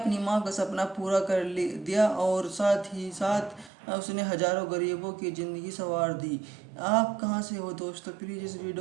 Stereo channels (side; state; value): left; drops out; at 3.7 s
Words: माँ का सपना पूरा कर दिया और साथ ही साथ उसने हजारों गरीबों की ज़िंदगी संवार दी। आप कहाँ से हो दोस्तों? प्लीज़ इस